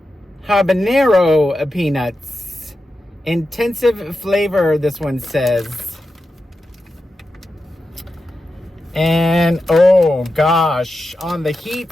habanero peanuts. Intensive flavor, this one says. And oh gosh, on the heat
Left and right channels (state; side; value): normal; both; correlation 0.90